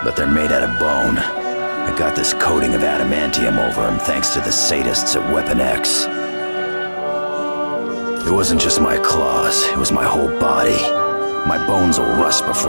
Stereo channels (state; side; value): inverted; both; correlation -1.00